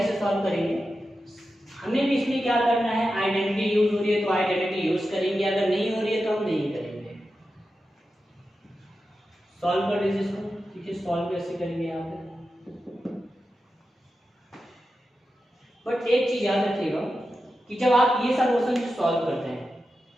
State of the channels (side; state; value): both; normal; correlation 0.91